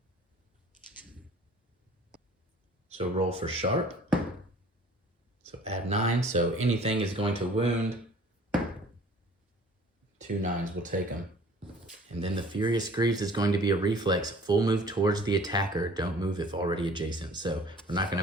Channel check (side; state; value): both; normal; correlation 0.50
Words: So roll for sharp. So add 9. So anything is going to wound. 2 9s will take them. And then the Furious Greaves is going to be a reflex. Full move towards the attacker. Don't move if already adjacent. So we're not going